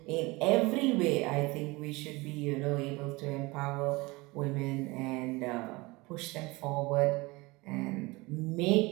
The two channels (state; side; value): quieter; left; 23.4 dB